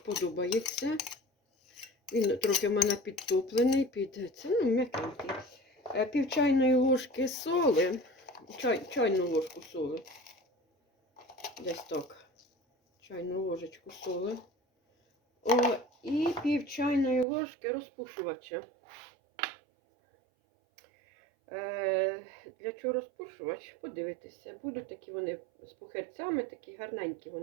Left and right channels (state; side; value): drops out; left; at 17.2 s